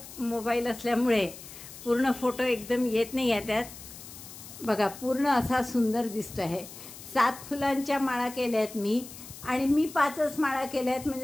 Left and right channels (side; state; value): left; noise; hiss, 15 dB below the sound